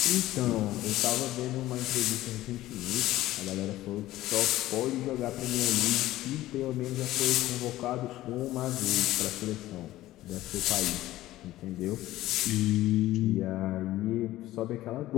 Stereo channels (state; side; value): quieter; right; 15.6 dB